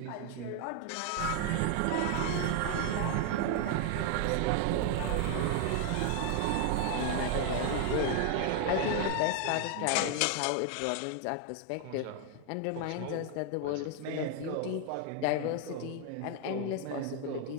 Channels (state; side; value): different; both; correlation 0.00